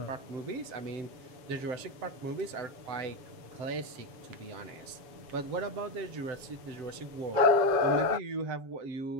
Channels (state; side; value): late; left; 7.3 ms